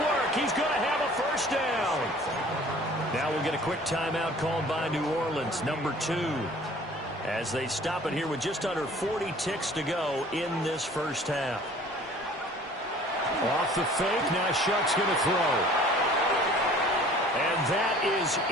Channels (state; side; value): normal; both; correlation 0.50